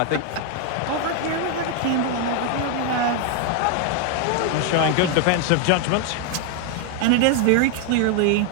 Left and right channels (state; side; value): different; both; correlation 0.01